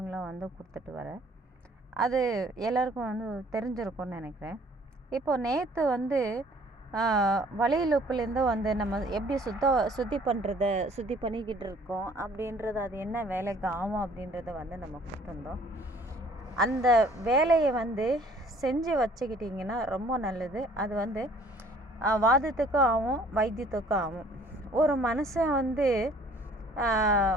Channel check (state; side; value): normal; both; correlation 0.56